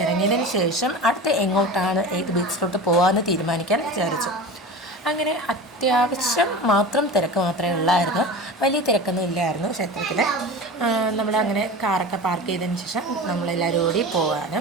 ഇറങ്ങിയതിന് ശേഷം അടുത്ത് എങ്ങോട്ടാണ് ഏത് ബീച്ചിലോട്ട് പോകാമെന്ന് തീരുമാനിക്കാൻ വിചാരിച്ചു. അങ്ങനെ അത്യാവശ്യം മാത്രം തിരക്ക് മാത്രമേ ഉള്ളായിരുന്നു, വലിയ തിരക്കൊന്നും ഇല്ലായിരുന്നു ക്ഷേത്രത്തിൽ. നമ്മളങ്ങനെ കാറൊക്കെ പാർക്ക് ചെയ്തതിന് ശേഷം നമ്മളെല്ലാവരും കൂടി പോകാണ്.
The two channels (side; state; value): both; normal; correlation 0.31